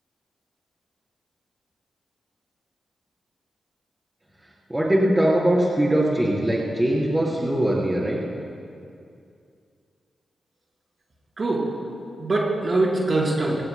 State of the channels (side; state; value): both; normal; correlation 0.93